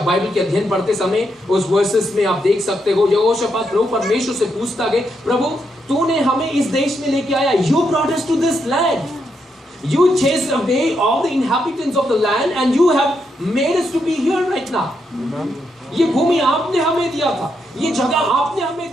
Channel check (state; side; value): normal; both; correlation 0.80